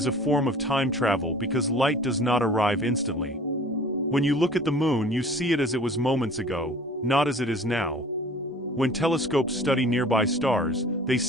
a form of time travel because light does not arrive instantly. When you look at the moon, you see it as it was moments ago, not as it is now. When telescopes study nearby stars, they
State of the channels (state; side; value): normal; both; correlation 0.47